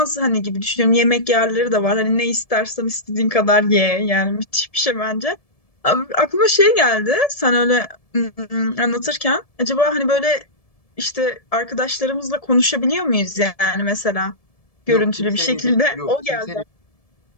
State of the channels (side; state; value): right; late; 1.7 ms